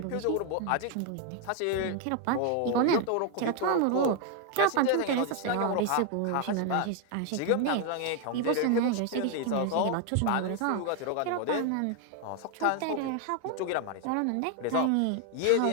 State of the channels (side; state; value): both; different; correlation 0.01